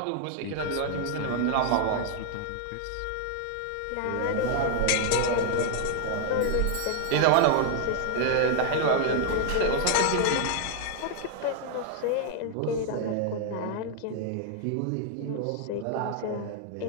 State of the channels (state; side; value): different; both; correlation 0.00